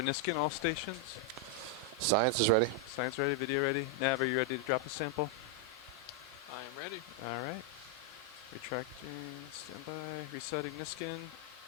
Niskin, all stations? Science is ready. Science ready, video ready. Nav, are you ready to drop a sample? I am ready. Alright. Retracting, standby, resetting Niskin,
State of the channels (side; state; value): both; normal; correlation 0.00